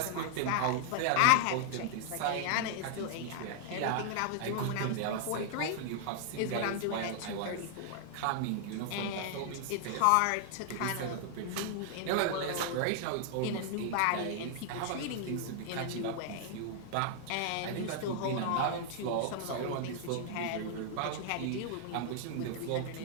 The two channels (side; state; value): both; different; correlation 0.00